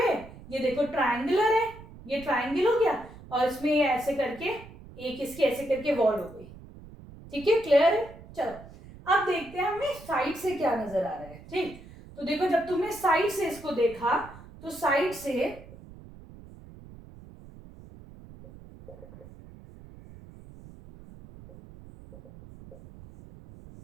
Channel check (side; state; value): right; noise; rumble, 18 dB below the sound